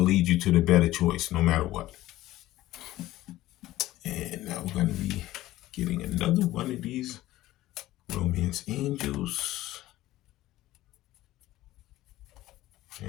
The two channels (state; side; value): quieter; right; 15.9 dB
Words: lead you to the better choice, no matter what. And now we're going to be getting another one of these romance angels.